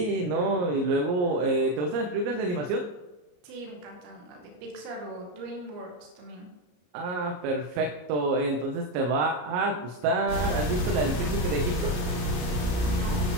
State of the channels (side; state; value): left; late; 33 ms